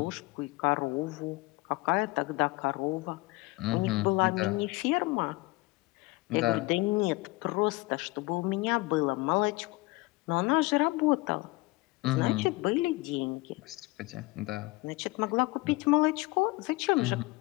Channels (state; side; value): quieter; right; 22.3 dB